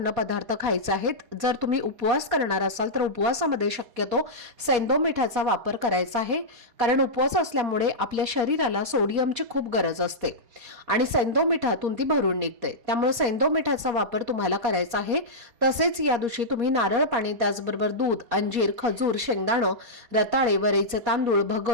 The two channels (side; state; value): left; late; 4.2 ms